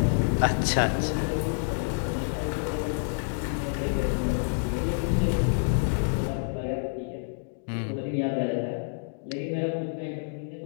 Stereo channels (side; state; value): right; silent; digital silence